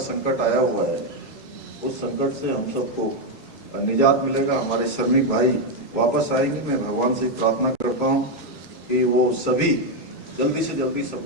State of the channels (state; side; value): normal; both; correlation 0.04